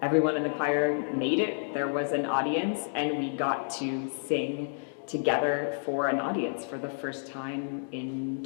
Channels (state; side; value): silent; right; digital silence